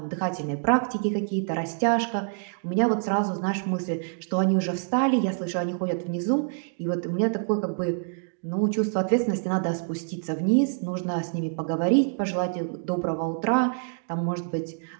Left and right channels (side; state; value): left; silent; digital silence